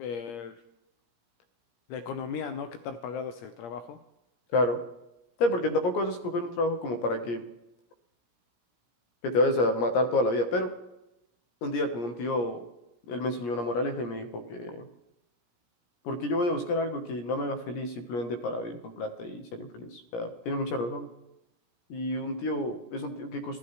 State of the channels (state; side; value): late; right; 17 ms